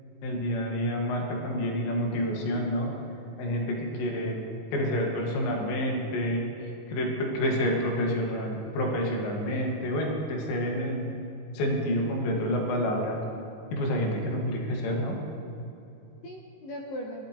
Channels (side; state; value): right; late; 19 ms